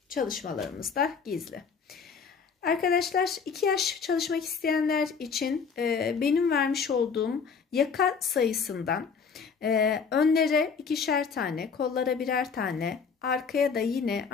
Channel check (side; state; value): right; quieter; 5.8 dB